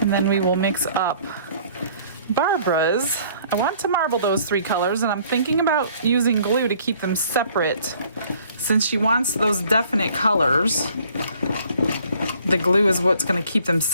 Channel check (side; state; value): both; inverted; correlation -0.57